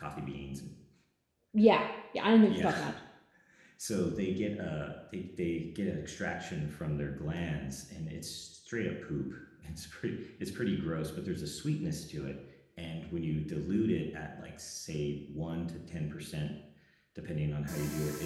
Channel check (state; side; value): identical; both; correlation 1.00